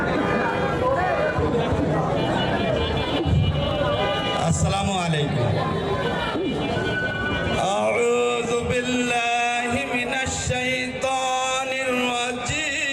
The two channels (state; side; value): identical; both; correlation 1.00